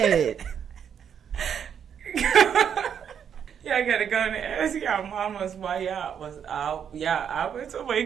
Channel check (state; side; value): quieter; left; 8.1 dB